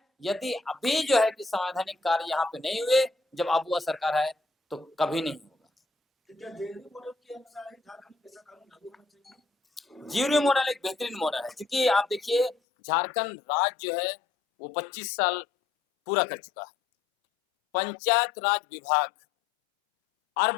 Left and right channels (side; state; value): right; drops out; at 12.6 s